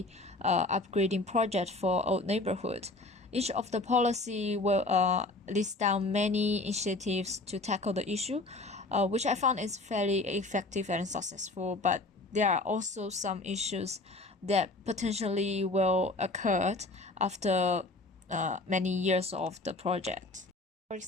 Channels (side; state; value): right; quieter; 3.0 dB